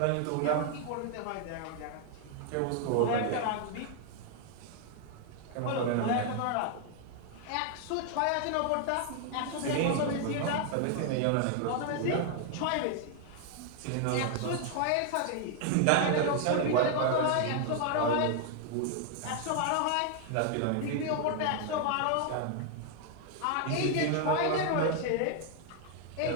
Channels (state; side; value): different; both; correlation 0.00